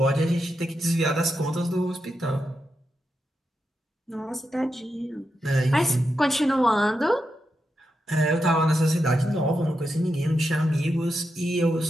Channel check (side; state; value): both; normal; correlation 0.86